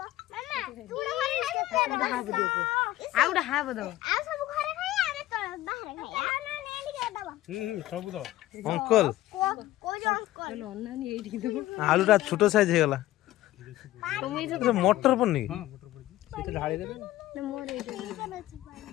মামা তুড়া ঘরে খাই আউডা হাব দাও আ সব ঘরে খাই আরে তো বাহিরে খাই আ না নে এদিকে দাও ସବୁ ତ অঙ্কল কই যে অঙ্কল অন্যান্য এইদিকে দেবো। আলুটা ছোট সাইজ হয়ে গেল। মটর পড়নি? ହଁ ମୋଟର ପଡିଛି ସେଇଟା ଢାଳି ଦେବେ। ନା ମୋର ଏଇଟା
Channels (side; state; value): right; quieter; 15.7 dB